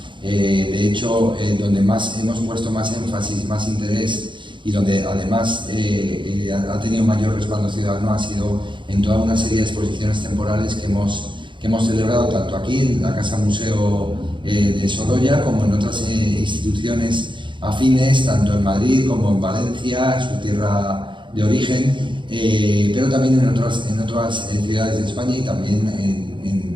De hecho, donde hemos puesto más énfasis, más interés y donde además ha tenido mayor respaldo ciudadano ha sido en toda una serie de exposiciones temporales que hemos celebrado tanto aquí en la Casa Museo de Sorolla como en otras instituciones afines, tanto en Madrid como en Valencia, su tierra de origen, pero también en otras ciudades de España y también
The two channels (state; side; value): late; left; 0.23 ms